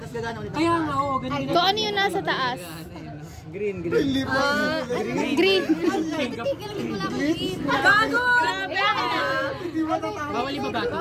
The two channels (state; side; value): identical; both; correlation 1.00